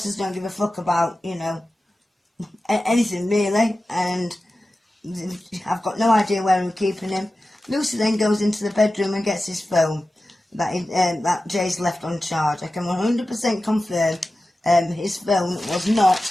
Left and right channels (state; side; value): normal; both; correlation 0.94